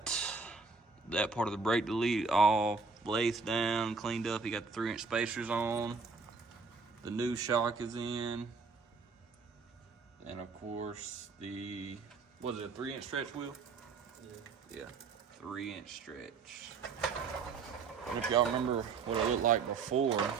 that part of the brake delete all lathed down, cleaned up. You got the 3-inch spacers on. The new shock is in. And of course the, was it a 3-inch stretch wheel? Yeah, 3-inch stretch. And if y'all remember what it looked like before,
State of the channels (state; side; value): quieter; left; 4.7 dB